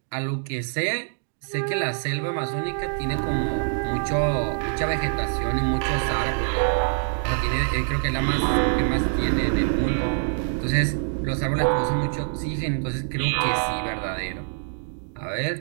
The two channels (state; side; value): silent; left; digital silence